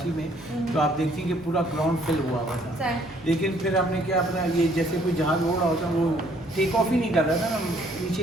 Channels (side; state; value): both; normal; correlation 0.63